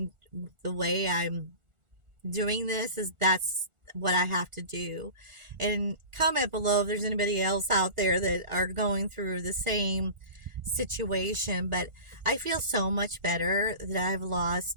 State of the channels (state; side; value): late; left; 1.4 ms